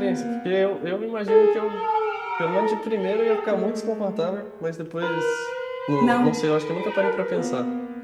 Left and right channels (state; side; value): identical; both; correlation 1.00